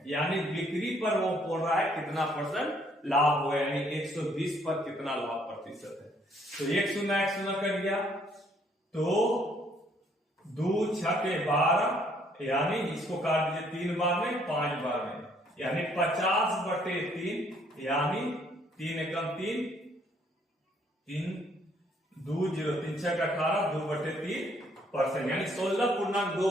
यानी बिक्री पर वो बोल रहा है कितना परसेंट लाभ हुआ, यानी 120 पर कितना लाभ प्रतिशत है। तो 1 0 कर गया, तो 2 6 12, यानी इसको काट दीजिए 3 बार में 5 बार में, यानी 50/3, यानी 3 एकम 3, 3 2 0 3 6 18, 2/3%, यानी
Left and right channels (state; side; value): normal; both; correlation 0.66